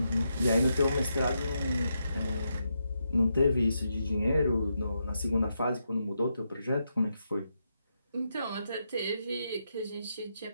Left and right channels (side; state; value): both; inverted; correlation -0.83